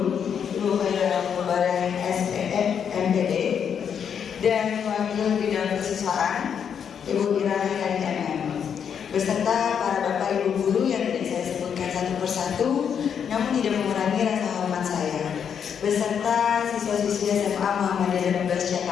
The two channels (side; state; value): right; quieter; 7.7 dB